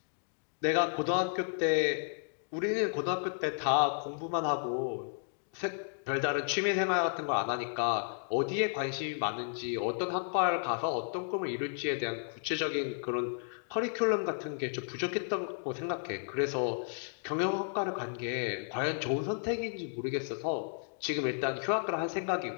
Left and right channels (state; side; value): silent; right; digital silence